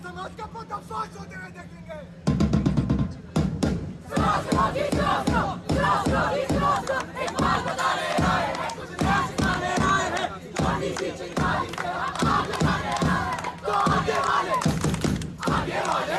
का पर्दाफाश होते हुए देखेंगे। तो आगे वाले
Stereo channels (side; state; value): both; identical; correlation 1.00